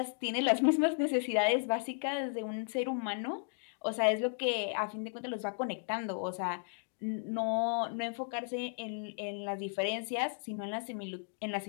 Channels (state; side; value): silent; right; digital silence